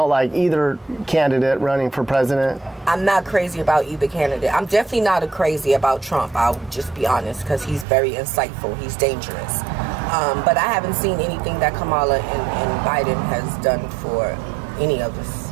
like either candidate running for president? I'm not crazy about either candidate. I'm definitely not crazy about Trump. I'll just be honest, because he's very insightful. He's dangerous. But I haven't seen anything that Kamala and Biden has done for any of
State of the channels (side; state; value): left; drops out; at 7.9 s